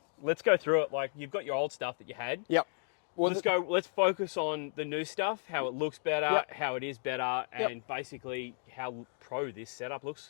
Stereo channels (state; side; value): silent; right; 55 dB below the other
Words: let's go through it. Like, you've got your old stuff that you had. Yep. Well, Let's focus on the new stuff, how it looks better, Yep. how it is better, Yep. and basically how pro this setup